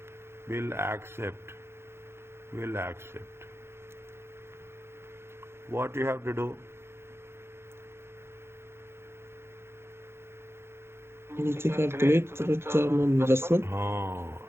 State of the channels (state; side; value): late; left; 0.12 ms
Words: will accept. What you have to do? You need to calculate return on investment.